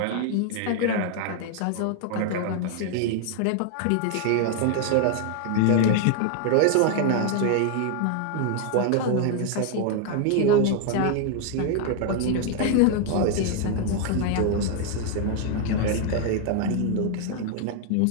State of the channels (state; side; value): different; both; correlation 0.00